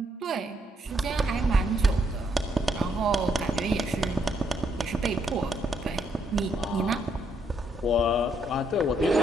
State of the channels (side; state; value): both; normal; correlation 0.76